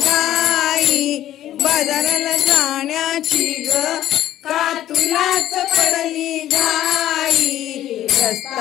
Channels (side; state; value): right; quieter; 12.7 dB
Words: बाजाराला जाण्याची ग का तुलाच पडली घाई